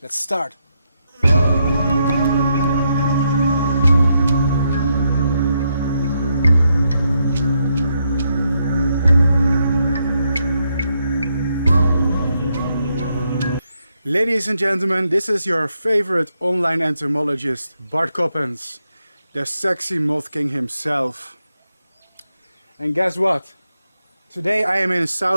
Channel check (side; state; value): both; inverted; correlation -0.79